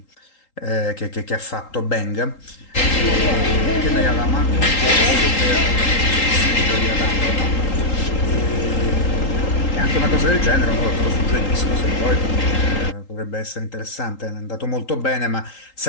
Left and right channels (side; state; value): right; late; 3.8 ms